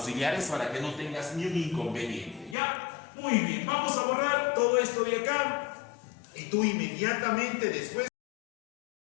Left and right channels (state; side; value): drops out; right; at 2.6 s